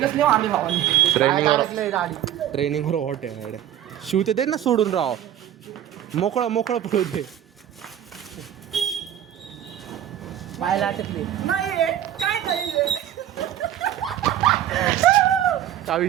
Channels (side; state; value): left; quieter; 11.2 dB